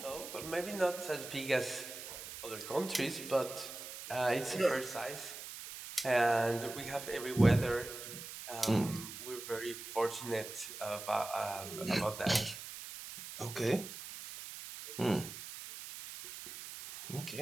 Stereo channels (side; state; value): right; noise; hiss, 10 dB below the sound